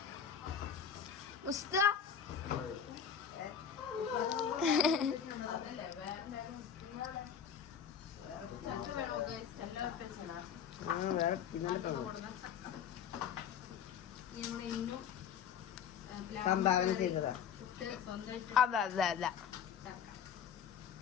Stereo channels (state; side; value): quieter; right; 7.8 dB